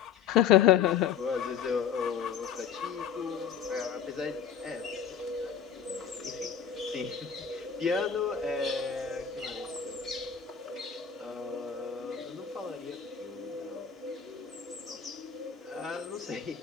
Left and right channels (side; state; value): right; quieter; 7.8 dB